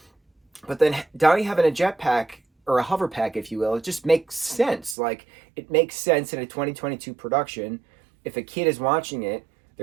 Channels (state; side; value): drops out; left; at 5.0 s